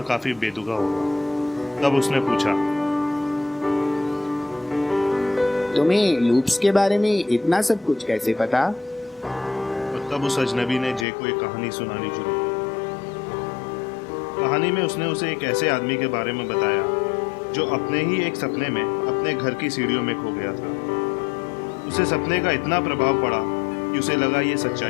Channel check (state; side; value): drops out; right; at 11.1 s